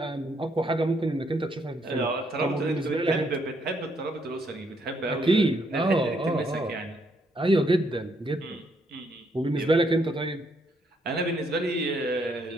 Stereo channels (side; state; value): both; normal; correlation 0.73